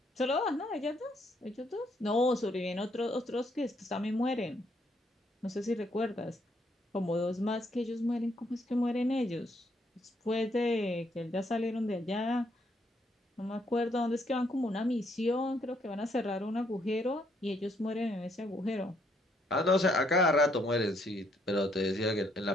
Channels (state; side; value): normal; both; correlation 0.71